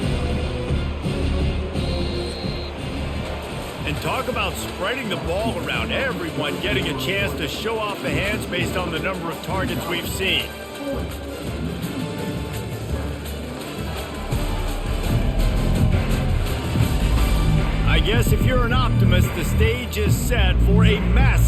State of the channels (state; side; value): identical; both; correlation 1.00